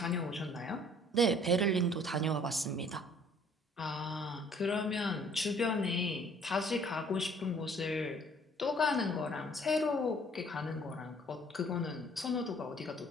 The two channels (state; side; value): normal; both; correlation 0.57